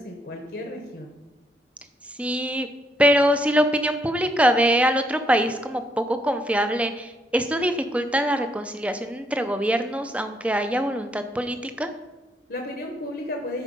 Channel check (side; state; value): both; normal; correlation 0.73